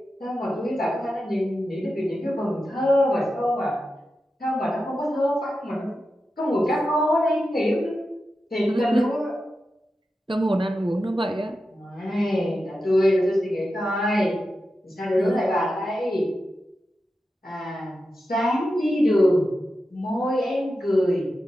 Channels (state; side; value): normal; both; correlation 0.90